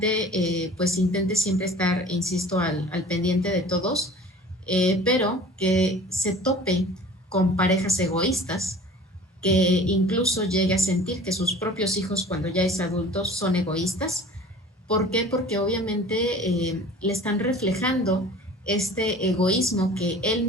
pues intente siempre estar, insisto, al pendiente de todos, pero que se tope con parejas egoístas, que incluso llegue a sentir que sus propios hijos cuando ya es adulto son egoístas. ¿Por qué? Porque obviamente le están reflejando este egoísmo que él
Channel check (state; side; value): normal; both; correlation 0.44